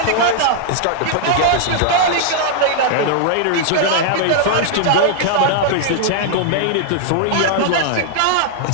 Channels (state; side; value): different; both; correlation -0.01